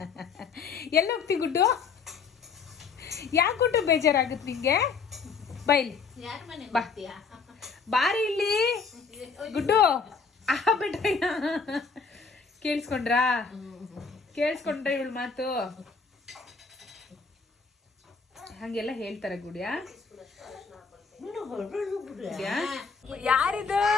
ಎಲ್ಲ ಹೋಗ್ತಿ ಗುಡ್ಡು? ಯಾಕೆ ಗುಡ್ಡು ಬೇಜಾರಾಗುತ್ತೆ ನಿಂಗೆ? ಬೈಲಿ ಬಾ ಬಾರಿ ಇಲ್ಲಿ ಗುಡ್ಡು ಬಿಟ್ರಯ್ಯ ಕೇಳಿಸ್ಕೊಂಡ್ರಾ ಇವಳು ಮಾತು ಹಂಗೆಲ್ಲ ಹೇಳ್ತಾರೆ ಗುಡಿಯಾ? ಯಾರಿದು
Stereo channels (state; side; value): quieter; right; 5.3 dB